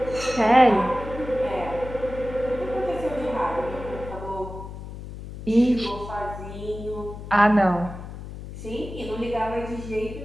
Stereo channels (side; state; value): left; noise; hum, 11 dB below the sound